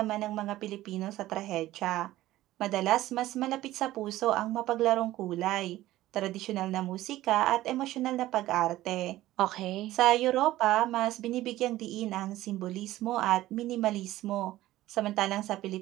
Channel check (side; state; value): left; quieter; 15.6 dB